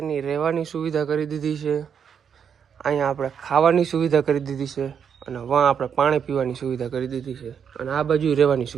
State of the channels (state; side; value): quieter; left; 7.5 dB